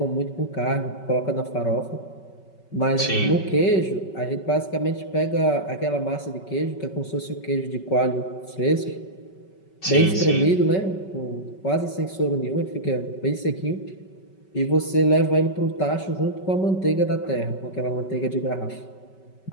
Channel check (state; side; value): late; right; 5.3 ms